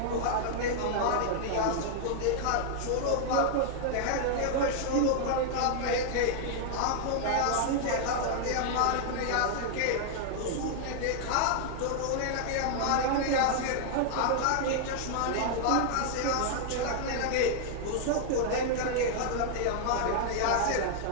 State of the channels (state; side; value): different; both; correlation -0.01